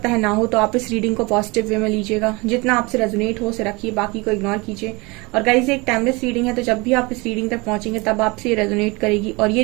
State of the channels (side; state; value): left; quieter; 25.8 dB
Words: है ना हो, तो आप इस रीडिंग को पॉजिटिव वे में लीजिएगा। जितना आपसे रेजोनेट हो उसे रखिए, बाकी को इग्नोर कीजिए। और गाइस, एक टाइमलेस रीडिंग है तो जब भी आप इस रीडिंग तक पहुंचेंगे तब आपसे ये रेजोनेट करेगी। और ये